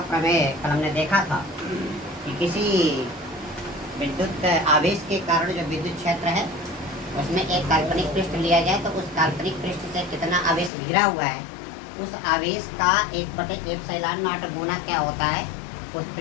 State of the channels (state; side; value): drops out; right; at 10.7 s